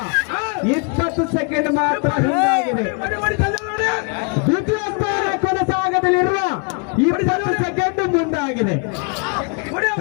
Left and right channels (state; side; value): quieter; right; 36.4 dB